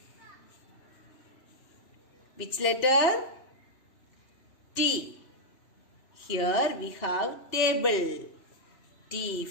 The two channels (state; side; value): late; right; 3.0 ms